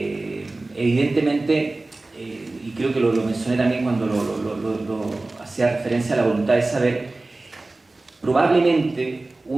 Evidentemente, y creo que lo mencioné también cuando lo hacía referencia a la voluntad de saber, probablemente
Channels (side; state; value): left; quieter; 3.1 dB